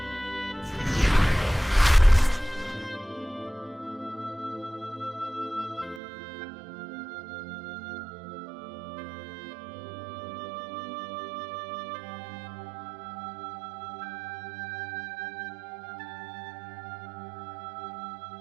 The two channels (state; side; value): drops out; left; at 6.0 s